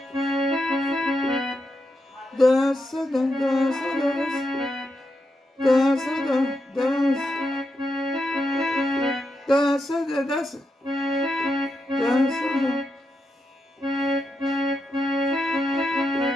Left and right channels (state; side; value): normal; both; correlation 0.85